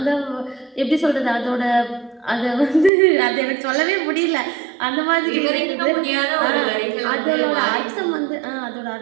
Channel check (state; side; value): drops out; left; at 2.9 s